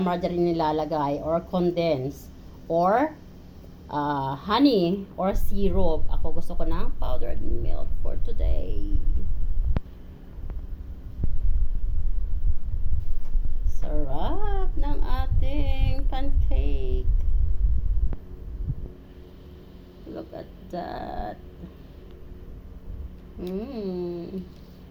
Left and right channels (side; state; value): both; identical; correlation 1.00